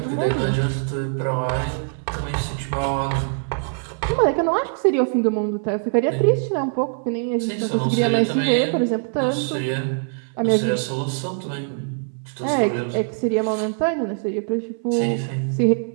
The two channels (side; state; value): left; silent; 64 dB below the other